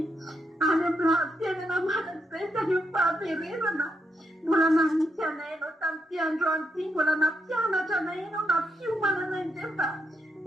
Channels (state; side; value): normal; both; correlation 0.80